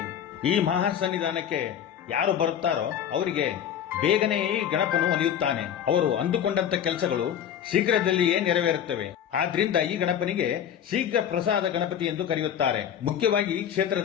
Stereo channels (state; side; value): quieter; right; 9.4 dB